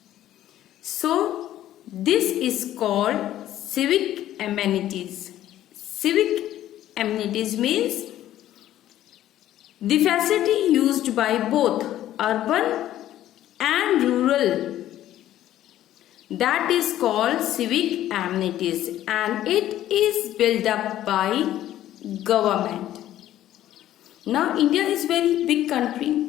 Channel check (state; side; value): quieter; right; 12.8 dB